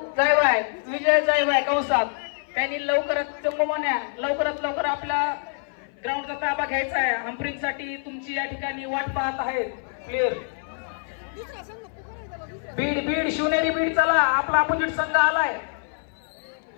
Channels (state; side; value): silent; right; 59 dB below the other